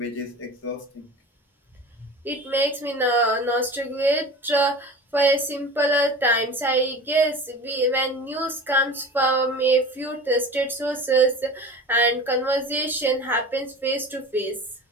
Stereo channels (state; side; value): normal; both; correlation 0.36